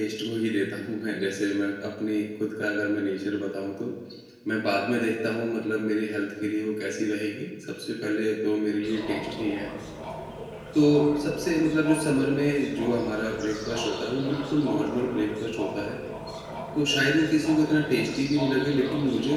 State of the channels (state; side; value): identical; both; correlation 1.00